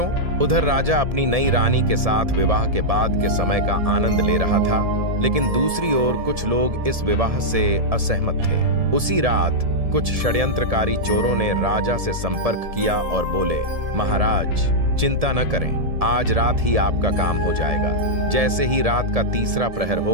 उधर राजा अपनी नई रानी के साथ विवाह के बाद के समय का आनंद ले रहा था, लेकिन दूसरी ओर कुछ लोग इस विवाह से असहमत थे। उसी रात कुछ षड्यंत्रकारी चोरों ने राजा से संपर्क किया और बोले, महाराज चिंता न करें, आज रात ही आपका काम हो जाएगा। जैसे ही रात का तीसरा प्रहर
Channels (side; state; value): left; late; 1.7 ms